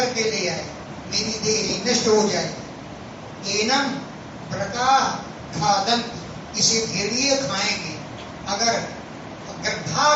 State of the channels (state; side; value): identical; both; correlation 1.00